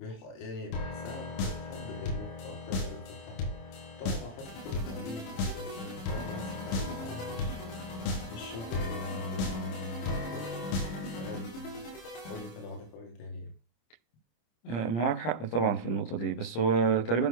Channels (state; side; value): late; right; 26 ms